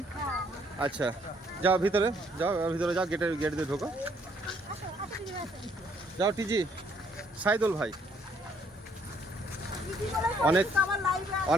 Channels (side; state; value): both; normal; correlation 0.66